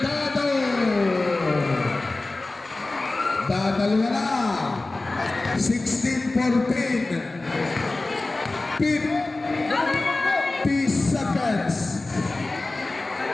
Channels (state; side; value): quieter; right; 3.1 dB